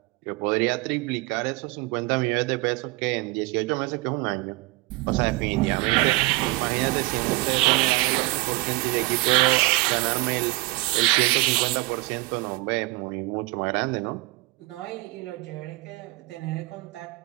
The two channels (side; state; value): left; quieter; 21.6 dB